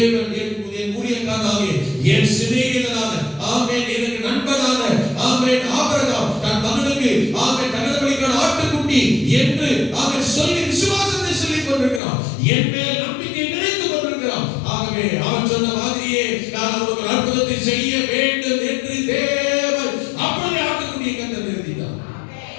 என் ஊழியக்காரனாக, என் சிநேகிதனான, ஆமென், எனக்கு நண்பனான, ஆமென், ஆபிரகாம் தன் மகனுக்கு, ஆமென், தகன பலிக்கான ஆட்டுக்குட்டி என்று அவன் சொல்லி விசுவாசத்தை சொல்லிக் கொண்டிருக்கிறான். என் மேல் நம்பிக்கை நினைத்துக் கொண்டிருக்கிறான். ஆகவே அவன் சொன்ன மாதிரியே நான் அவனுக்கு ஒரு அற்புதத்தை செய்ய வேண்டும் என்று தேவன் அப்படியே ஆட்டுக்குட்டியை கர்த்தர் நிறுத்தினார்.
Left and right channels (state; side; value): drops out; right; at 12.0 s